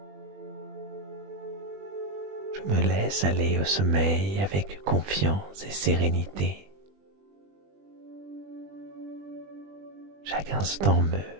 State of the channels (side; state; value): left; late; 20 ms